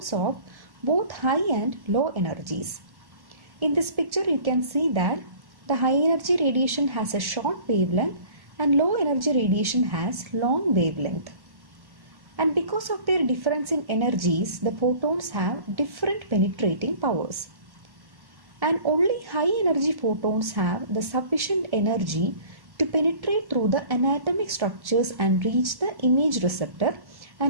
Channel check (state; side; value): late; left; 1.1 ms